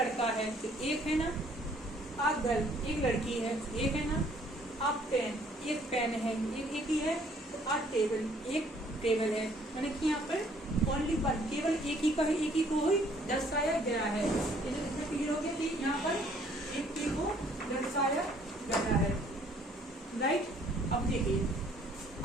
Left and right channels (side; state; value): both; normal; correlation 0.61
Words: है तो एक है ना, अब गर्ल एक लड़की है एक है ना, अब पेन एक पेन है एक ही है, तो अब टेबल एक टेबल है, यानी कि यहाँ पर ओनली वन, केवल एक ही का है, एक ही को ही दर्शाया गया है। इसमें क्लियर हो गया कि यहाँ पर एक ही को दर्शाया गया है, राइट। अब देखिए,